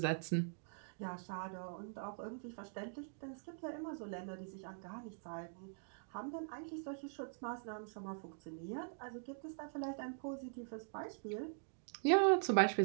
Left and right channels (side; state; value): left; silent; digital silence